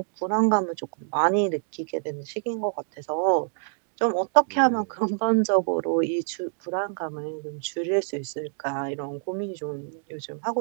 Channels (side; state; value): left; silent; 61 dB below the other